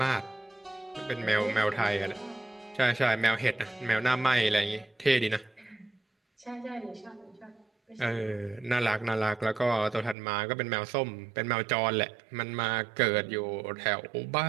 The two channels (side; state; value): left; drops out; at 10.2 s